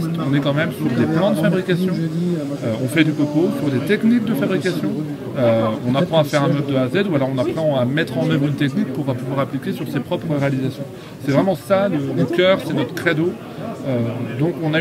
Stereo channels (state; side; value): identical; both; correlation 1.00